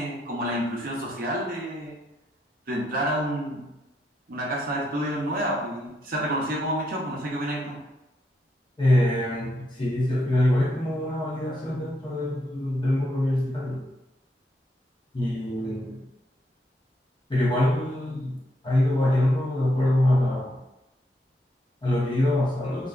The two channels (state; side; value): normal; both; correlation 0.78